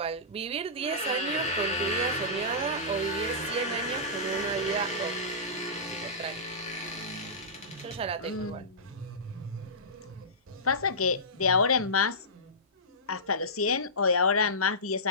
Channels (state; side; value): normal; both; correlation -0.19